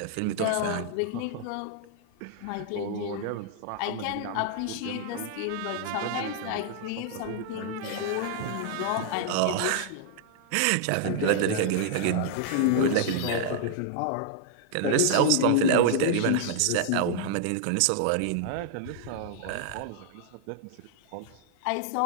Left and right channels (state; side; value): different; both; correlation -0.01